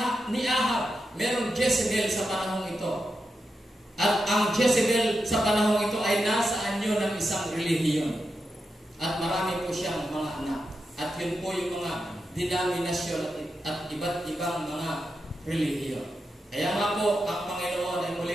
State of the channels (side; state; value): both; normal; correlation 0.88